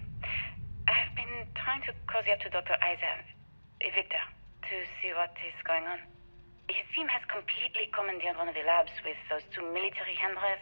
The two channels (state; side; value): inverted; both; correlation -1.00